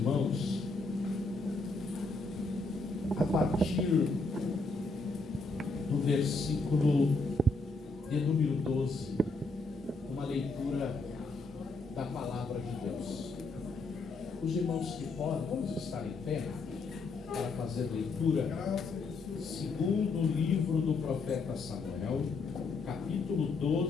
a partir do versículo de número 12, uma leitura da palavra de Deus. Os irmãos que podem, vamos estar em pé para fazer leitura. Segundo livro do profeta Samuel, capítulo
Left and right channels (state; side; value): quieter; right; 3.5 dB